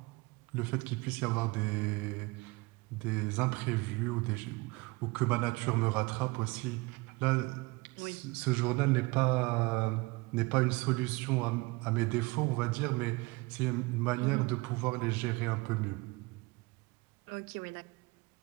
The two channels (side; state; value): left; quieter; 24.5 dB